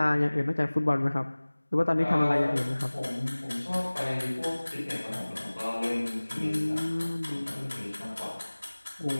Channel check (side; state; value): both; inverted; correlation -1.00